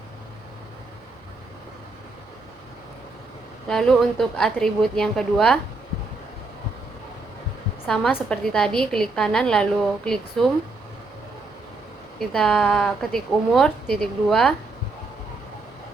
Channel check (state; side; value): quieter; left; 3.4 dB